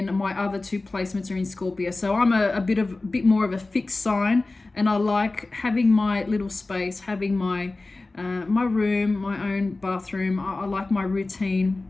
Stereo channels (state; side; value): quieter; right; 3.2 dB